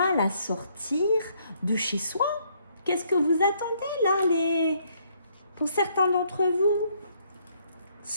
à sortir de chez soi. Qu'est-ce que vous attendez là, Pour certains d'entre vous,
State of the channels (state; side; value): inverted; both; correlation -0.69